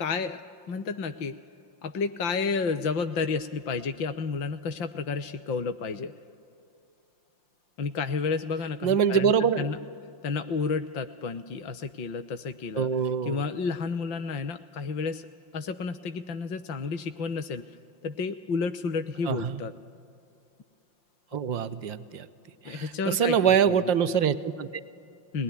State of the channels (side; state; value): right; late; 5.7 ms